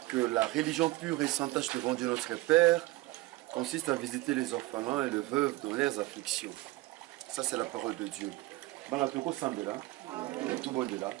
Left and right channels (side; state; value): left; quieter; 19.9 dB